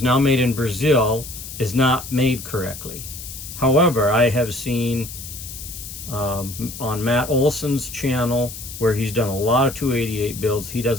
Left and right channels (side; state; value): left; noise; hiss, 11 dB below the sound